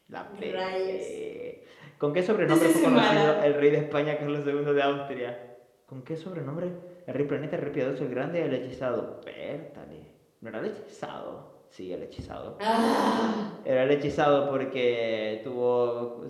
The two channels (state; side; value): identical; both; correlation 1.00